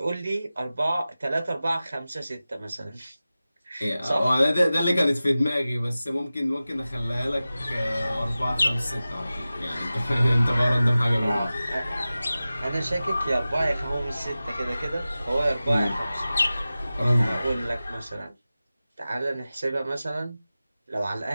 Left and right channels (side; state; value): both; inverted; correlation -0.95